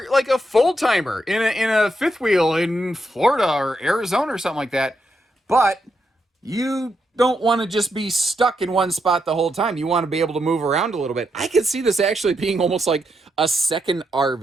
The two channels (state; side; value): normal; both; correlation 0.82